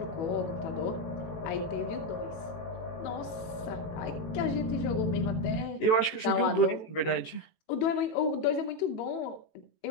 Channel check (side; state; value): right; late; 18 ms